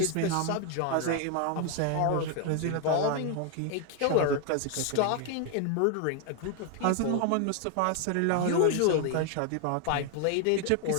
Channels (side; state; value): both; different; correlation 0.00